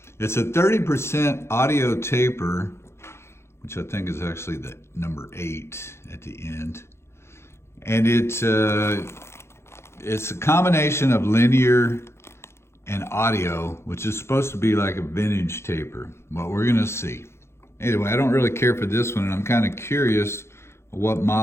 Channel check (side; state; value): right; late; 0.13 ms